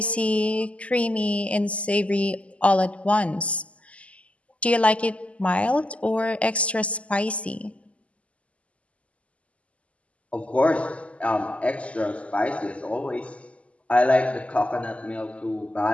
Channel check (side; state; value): right; late; 0.064 ms